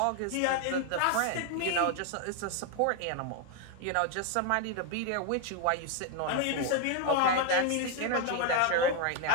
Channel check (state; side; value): different; both; correlation 0.01